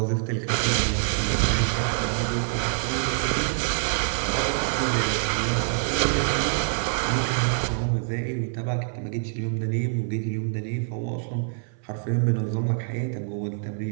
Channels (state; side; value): silent; left; 59 dB below the other